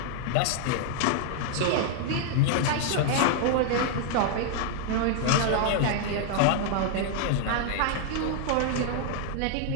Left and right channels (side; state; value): both; different; correlation 0.00